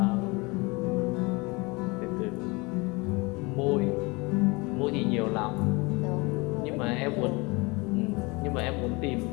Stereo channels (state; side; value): quieter; right; 26.2 dB